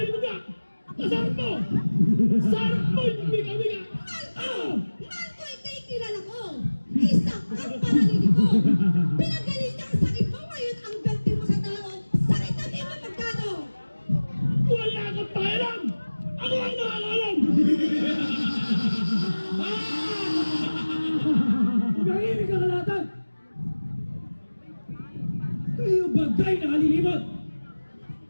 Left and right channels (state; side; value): inverted; both; correlation -1.00